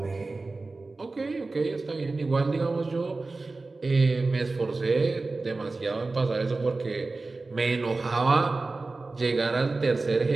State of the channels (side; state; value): left; quieter; 3.5 dB